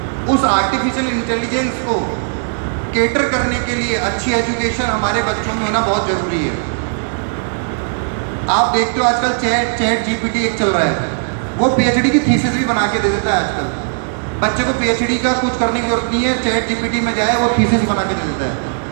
उस आर्टिफिशियल इंटेलिजेंस को केटर करने के लिए अच्छी एजुकेशन हमारे बच्चों में होना बहुत ज़रूरी है। आप देखते हो आजकल चैट जीपीटी एक चल रहा है, वो पीएचडी की थीसिस भी बना के दे देता है। आजकल बच्चे को पीएचडी का कुछ करने की जरूरत नहीं है, चैट जीपीटी में जाए वो थीसिस बना के दे देता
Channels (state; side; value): silent; left; digital silence